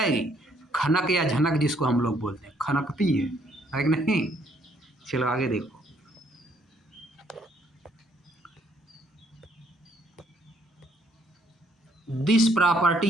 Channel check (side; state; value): both; normal; correlation 0.68